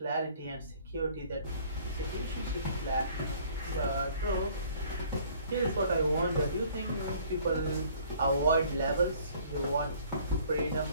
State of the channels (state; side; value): inverted; both; correlation -0.55